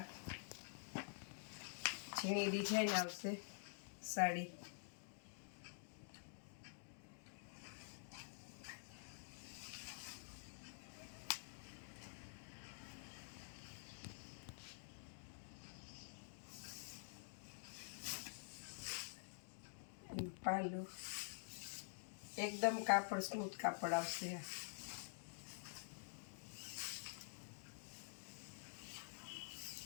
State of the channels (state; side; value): silent; right; digital silence